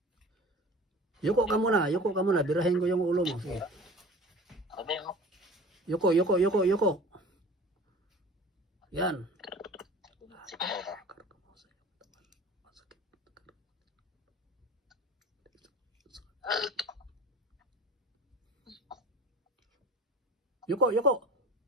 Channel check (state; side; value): normal; both; correlation 0.41